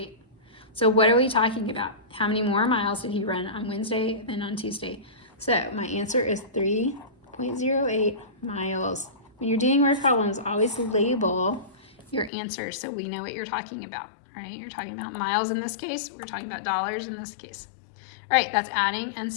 So what are we talking about? How many more miles did he run on Wednesday than on Tuesday? So my answer is 3.08 miles. When you're doing word problems, always label your answers so we know what you're talking about, right? You're talking about miles in this case. We're talking about dollars in this case. All right, that's adding and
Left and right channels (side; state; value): right; drops out; at 12.3 s